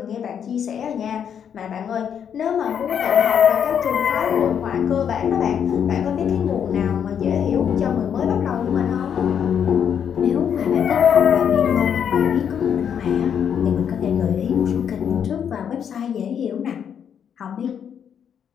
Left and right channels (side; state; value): right; quieter; 8.2 dB